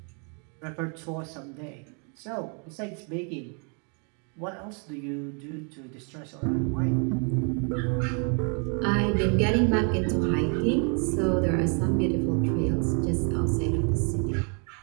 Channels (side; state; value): left; quieter; 38.7 dB